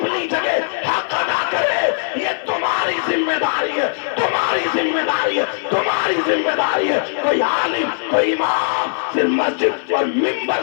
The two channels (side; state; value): right; silent; 56 dB below the other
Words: جگہ حق ادا کرے۔ یہ تمہاری ذمہ داری ہے، تمہاری ذمہ داری ہے، تمہاری ذمہ داری ہے۔ کوئی عالم، کوئی امام صرف مسجد اور